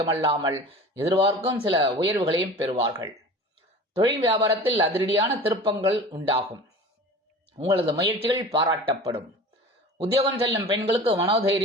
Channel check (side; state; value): both; normal; correlation 0.38